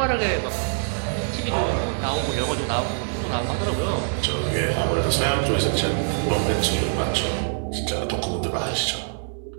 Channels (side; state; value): left; silent; digital silence